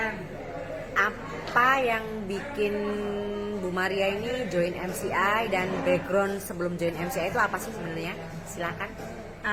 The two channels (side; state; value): both; identical; correlation 1.00